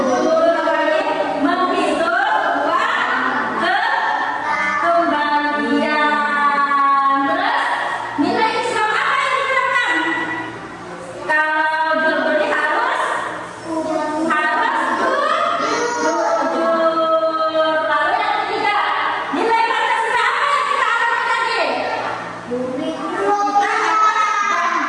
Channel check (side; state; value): both; identical; correlation 1.00